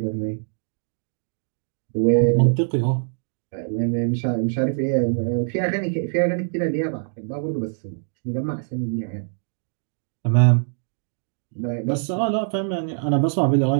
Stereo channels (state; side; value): silent; left; digital silence